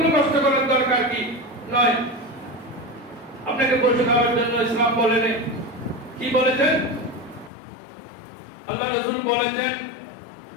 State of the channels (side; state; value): right; drops out; at 7.5 s